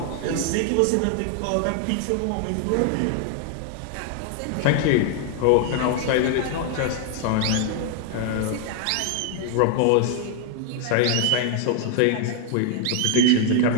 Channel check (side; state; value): both; different; correlation 0.00